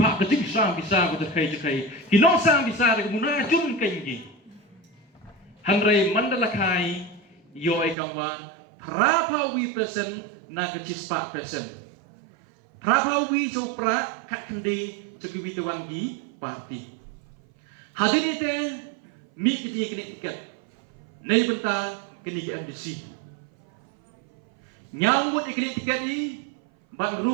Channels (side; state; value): left; drops out; at 8.0 s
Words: kajing sam bisa ko khai ki no sam bisa de muna jun kengi hanrai mandala khai yo e kangwa prapawi person na kachispa person prapawi so pra khat khandi chaki witawangi parti hadir ite mi kiti kini tiket nei benta kini ke MDC nyambut kini tiket ni ban